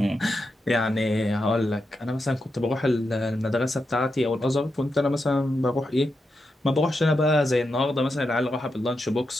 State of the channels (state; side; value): normal; both; correlation 0.87